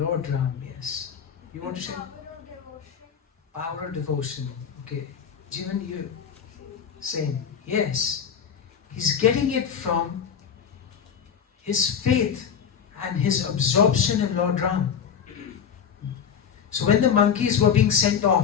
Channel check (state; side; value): quieter; right; 7.5 dB